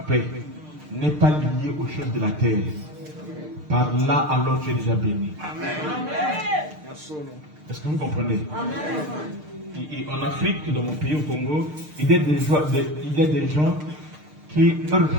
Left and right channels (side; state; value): left; late; 6.6 ms